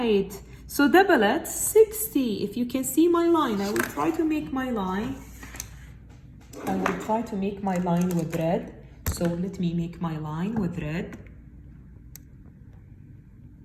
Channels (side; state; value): both; identical; correlation 1.00